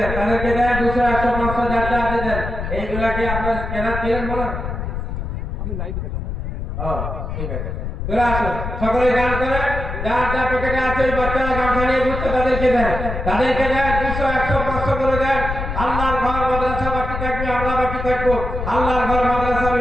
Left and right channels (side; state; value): left; noise; rumble, 5 dB below the sound